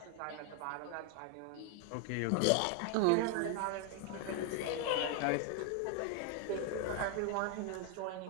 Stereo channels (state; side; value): different; both; correlation 0.00